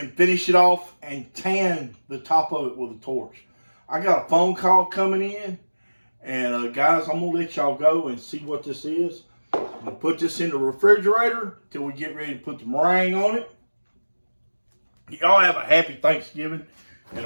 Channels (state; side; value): inverted; both; correlation -1.00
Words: finish it off and tan the top of it with a torch. I got a phone call coming in, and guys, I'm gonna let y'all go and see what this is. I'm gonna put this in the refrigerator till we get ready to put the meringue on it. Y'all have a happy Thanksgiving and